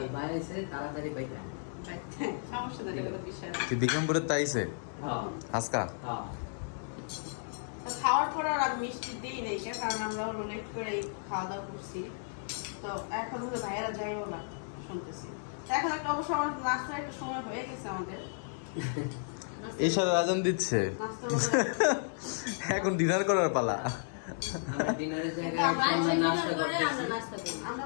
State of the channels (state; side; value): silent; right; digital silence